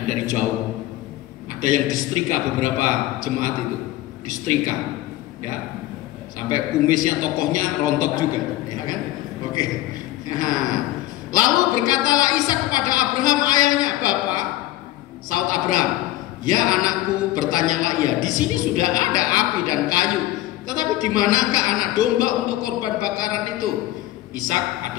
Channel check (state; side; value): quieter; right; 15.5 dB